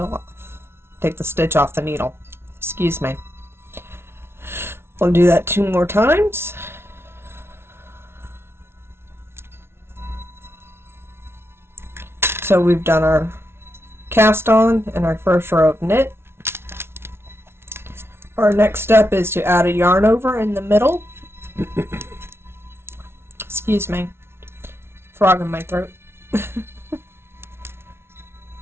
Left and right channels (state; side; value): late; left; 0.12 ms